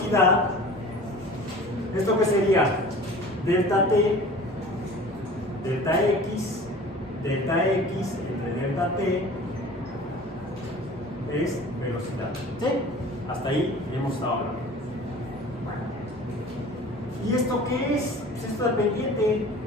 ¿esto qué sería? Delta T, delta X entre delta T es velocidad. ¿Sí? Hasta ahí hemos estado hablando. ¿Y esto qué es? Es esto dependiente.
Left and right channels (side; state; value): both; normal; correlation 0.42